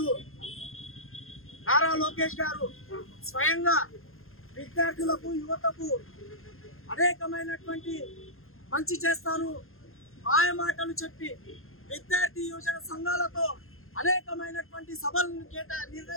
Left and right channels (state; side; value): late; right; 0.61 ms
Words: నారా లోకేష్ గారు స్వయంగా విద్యార్థులకు, యువతకు అనేకమైనటువంటి మంచి చేస్తాను మాయమాటలు చెప్పి విద్యార్థి యువజన సంఘాలతో అనేకమైనటువంటి సభలను